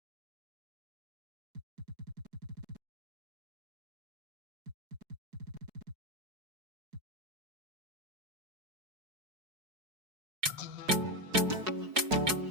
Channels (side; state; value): left; late; 4.7 ms